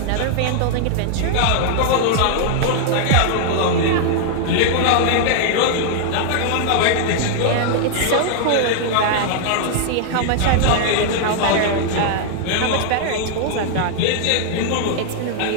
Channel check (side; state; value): both; different; correlation 0.00